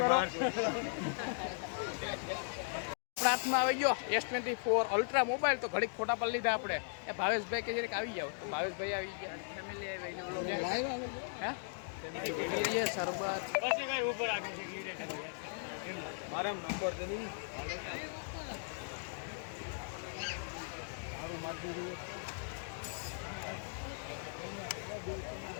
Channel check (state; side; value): silent; right; digital silence